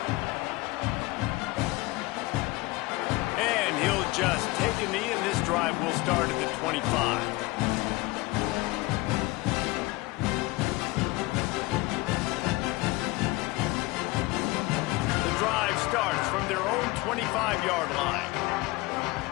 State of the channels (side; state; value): right; quieter; 21.8 dB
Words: And he'll just take a knee, and this drive will start at the 25. The drive starts from their own 25-yard line.